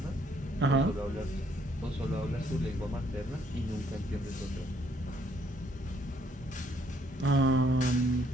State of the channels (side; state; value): both; normal; correlation 0.68